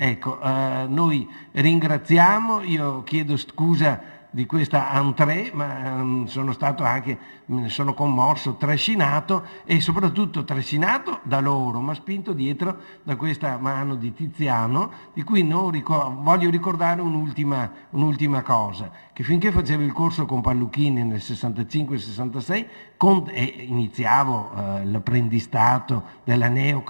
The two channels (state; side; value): inverted; both; correlation -1.00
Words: noi ringraziamo, io chiedo scusa di questa entrée, ma sono stato anche, me ne sono commosso, trascinato, e soprattutto trascinato da loro, ma spinto dietro da questa mano di Tiziano, di cui voglio ricordare un'ultima cosa, che finché facevo il corso con Palluchini nel 65-66 e iniziavo l'apprendistato della